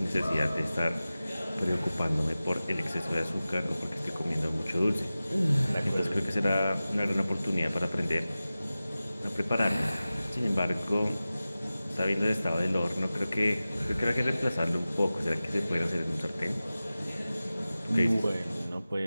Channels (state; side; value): inverted; both; correlation -0.96